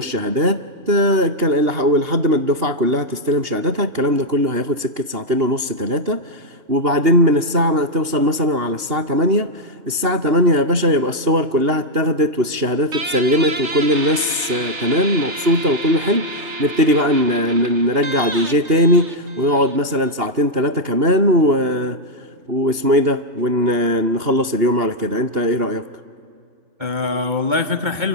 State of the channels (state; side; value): late; left; 2.8 ms